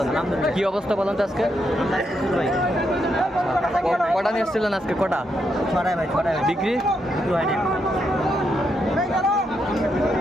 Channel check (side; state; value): both; normal; correlation 0.80